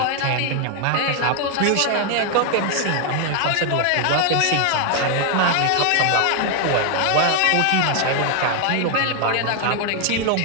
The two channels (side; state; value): both; different; correlation 0.01